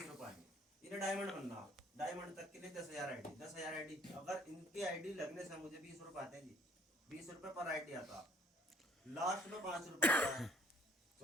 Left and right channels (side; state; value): both; normal; correlation 0.58